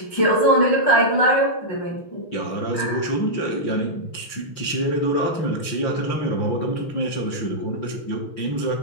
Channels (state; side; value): late; right; 5.9 ms